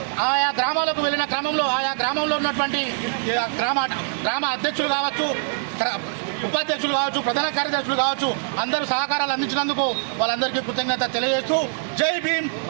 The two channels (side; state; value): left; silent; digital silence